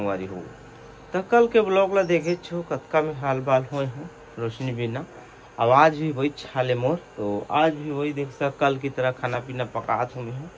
हो। तो कल के ब्लॉग ला देखे छो कतका में हाल बाल हुए हैं रोशनी बिना। आवाज भी वही छाले मोर। तो आज भी वही देख सक कल की तरह खाना पीना पकात हूँ मैं।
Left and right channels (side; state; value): both; identical; correlation 1.00